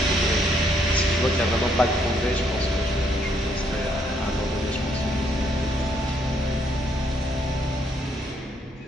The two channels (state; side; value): normal; both; correlation 0.71